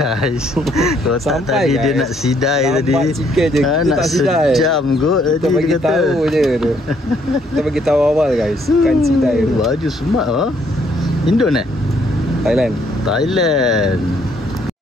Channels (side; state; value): both; normal; correlation 0.68